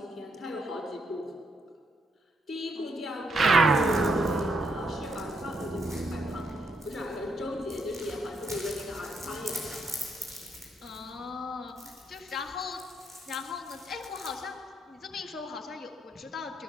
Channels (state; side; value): normal; both; correlation 0.75